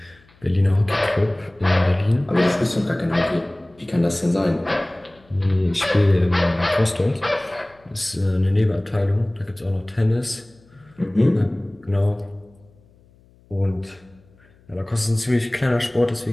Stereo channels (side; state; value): left; noise; hum, 30 dB below the sound